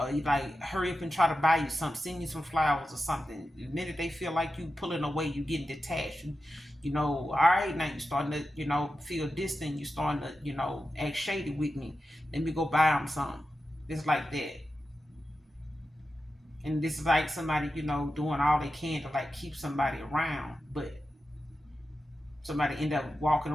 like hurry up and try to buy you something, send you some flowers or something. The minute they feel like you pulling away, you getting detached. All right, now you starting to, feel distant. You starting to, act shady with me. Let me go buy them something. It's like that. And this is like somebody, doing all they can to like keep somebody around, but somebody end up walking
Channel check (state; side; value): normal; both; correlation 0.91